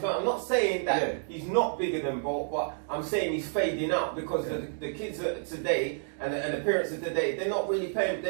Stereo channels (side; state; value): left; silent; digital silence